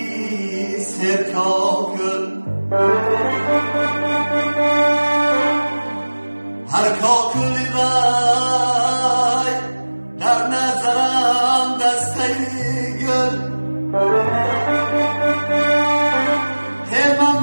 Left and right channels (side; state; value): both; inverted; correlation -1.00